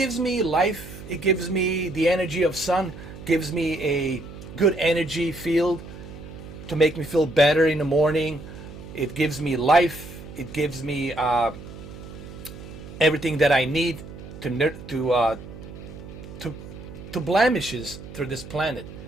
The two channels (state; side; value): noise; right; hum, 14 dB below the sound